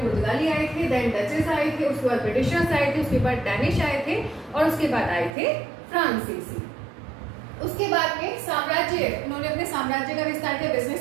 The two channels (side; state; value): left; drops out; at 5.3 s